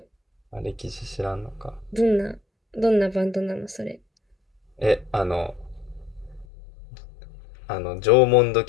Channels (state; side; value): drops out; right; at 6.5 s